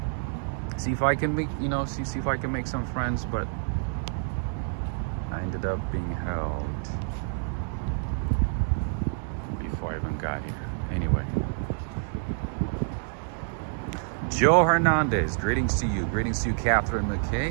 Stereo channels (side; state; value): left; silent; 57 dB below the other